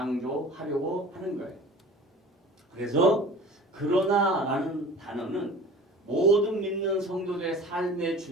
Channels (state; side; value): normal; both; correlation 0.41